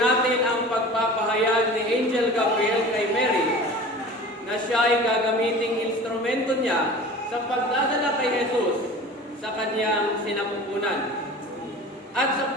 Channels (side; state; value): both; normal; correlation 0.39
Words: ang pagpapahayag ni Angel Gabriel kay Mary na siya ay gagamiting instrumento niya sa pagdadala kay Jesus sa kanyang sinapupunan. At sa